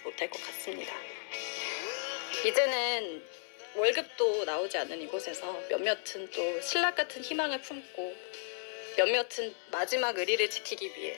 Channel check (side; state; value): right; silent; digital silence